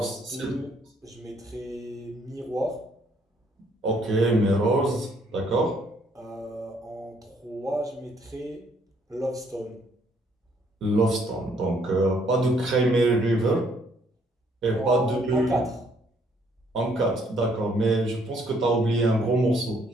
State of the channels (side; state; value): both; normal; correlation 0.67